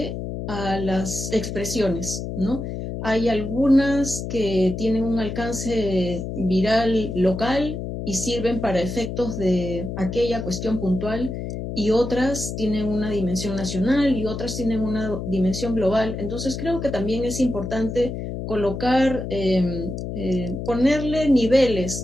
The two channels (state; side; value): noise; left; hum, 6 dB below the sound